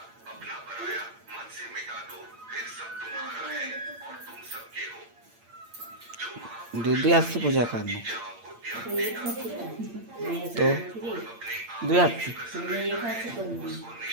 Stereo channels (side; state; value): left; late; 8.7 ms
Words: दूधी हाथ से पूजा करना तो दो हाथ से